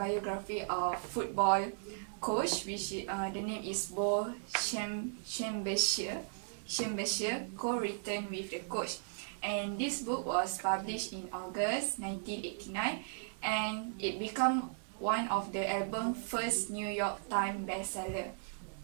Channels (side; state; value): left; silent; digital silence